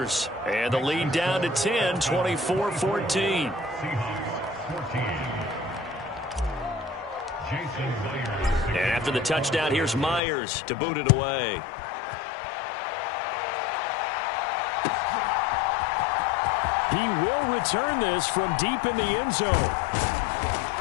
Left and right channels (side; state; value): right; drops out; at 10.2 s